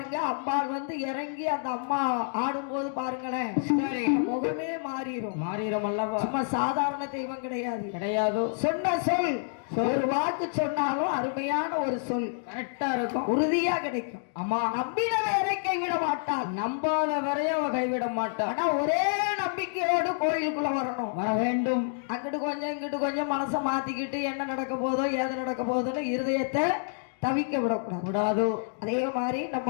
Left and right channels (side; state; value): right; silent; digital silence